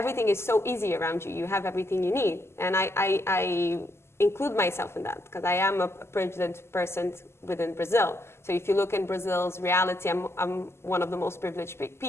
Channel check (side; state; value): right; late; 0.12 ms